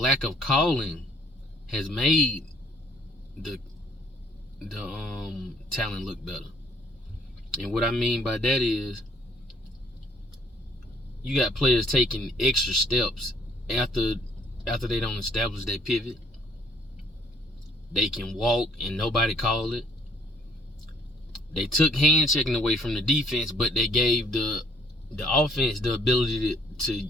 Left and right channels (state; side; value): normal; both; correlation 0.62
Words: of calling has made the talent look better. And what I mean by that is, you got players taking extra steps after they don't establish their pivot. They can walk and nobody call it. They took hand checking away from the defense, but they gave the offense the ability